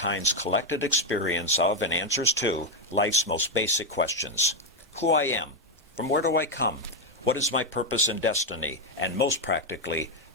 collected experience of and answers to life's most basic questions. Who I am, from where do I come, what is my purpose and destiny, and most practically,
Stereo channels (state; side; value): normal; both; correlation 0.04